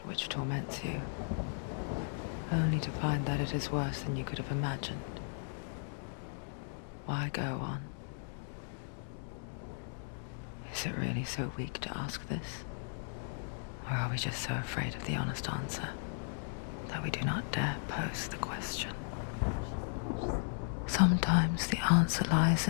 which torments you, only to find that it is worse than you could have imagined? Why go on? Is it really so weak to ask this? Or are we just so afraid of the honest answer that we do not dare pose the question? Sometimes the answer lies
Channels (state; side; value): silent; right; digital silence